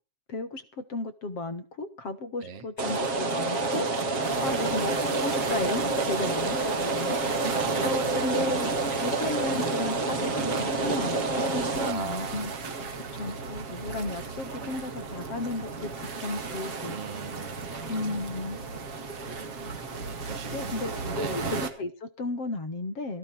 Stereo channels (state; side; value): late; right; 7.4 ms